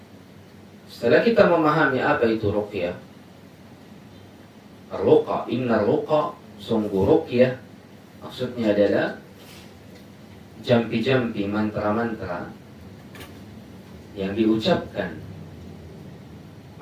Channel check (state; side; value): identical; both; correlation 1.00